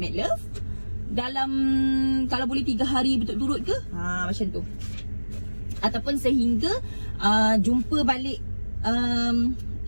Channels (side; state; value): both; inverted; correlation -1.00